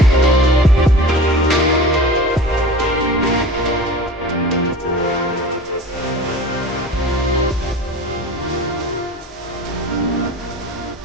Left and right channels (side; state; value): both; normal; correlation 0.37